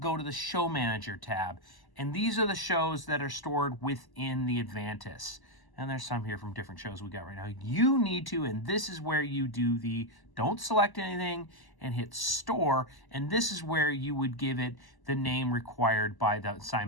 to the Show Manager tab. And these are the shows that are stored within the Avantis. And there's some here from different shows we got right now. You need to, and this is where you do the, don't select anything and hit store. And this is where you would give it the name required by the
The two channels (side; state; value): right; late; 1.0 ms